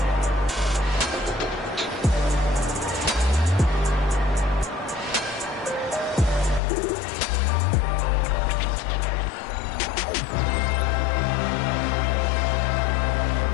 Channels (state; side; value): drops out; right; at 6.6 s